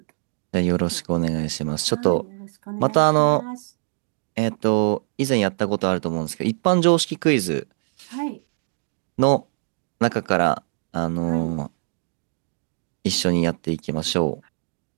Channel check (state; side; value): silent; left; digital silence